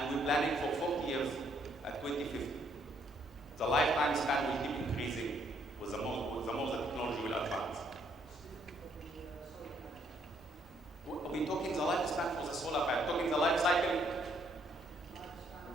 we're planning for 40 years at 2050. The lifetime span will keep increasing with the more the technology will advance. We're talking the lifespan for the solar panel, talking the life cycle.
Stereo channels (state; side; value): normal; both; correlation 0.69